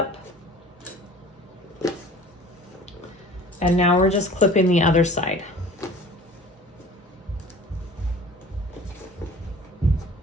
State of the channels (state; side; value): normal; both; correlation 0.45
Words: And now we're just clipping the other side.